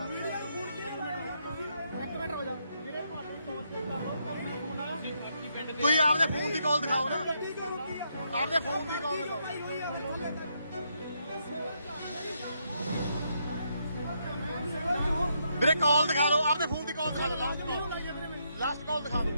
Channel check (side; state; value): both; inverted; correlation -0.77